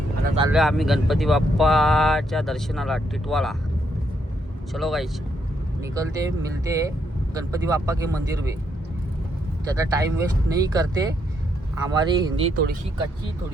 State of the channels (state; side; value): normal; both; correlation 0.76